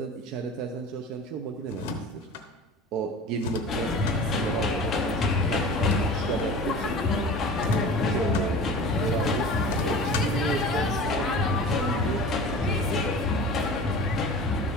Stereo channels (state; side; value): normal; both; correlation 0.37